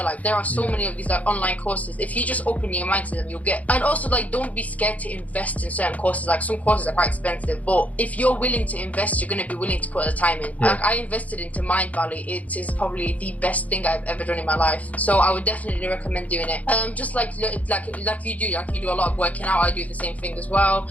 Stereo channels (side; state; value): right; late; 0.071 ms